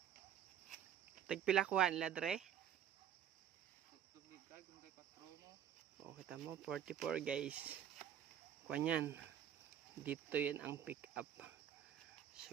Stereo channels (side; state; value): left; quieter; 9.9 dB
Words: Tagpilakuan ladre. Oh, kita mo 44 guys. Kuan dito 'yan ang pick up.